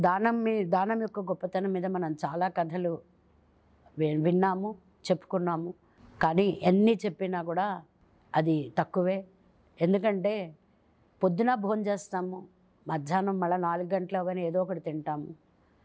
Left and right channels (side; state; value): both; identical; correlation 1.00